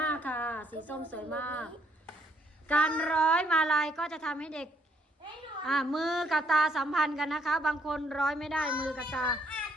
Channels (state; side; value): normal; both; correlation 0.70